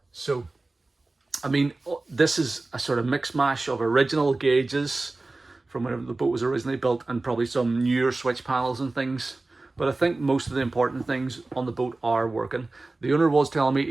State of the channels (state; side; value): quieter; left; 3.2 dB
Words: So, I mean, this is a sort of mix mash of original gauges from whenever the boat was originally built, and probably some newer switch panels and things. But I think most of the important things on the boat are working. The owner was telling me